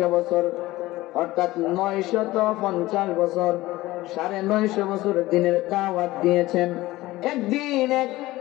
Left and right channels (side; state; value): right; quieter; 18.1 dB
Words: বছর, অর্থাৎ 950 বছর, 950 বছর দিনের দাওয়াত দিয়েছেন। একদিন এক